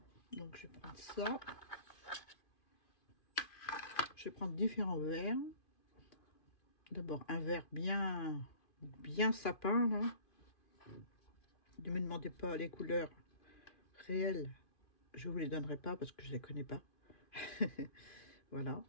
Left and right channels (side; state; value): right; late; 2.5 ms